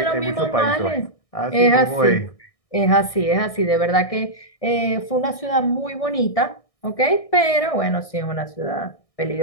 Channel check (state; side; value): late; right; 1.6 ms